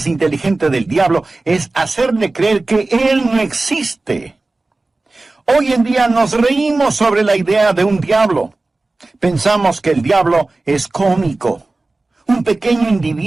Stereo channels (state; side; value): quieter; left; 3.2 dB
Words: inteligente del diablo es hacerle creer que él no existe. Hoy en día nos reímos sobre la idea de un diablo. Pensamos que el diablo es cómico. Un pequeño